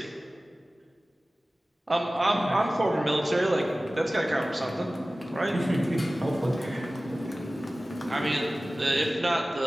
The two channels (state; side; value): normal; both; correlation 0.97